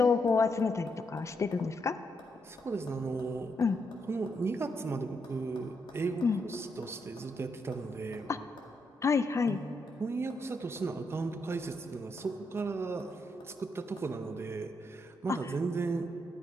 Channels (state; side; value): normal; both; correlation 0.79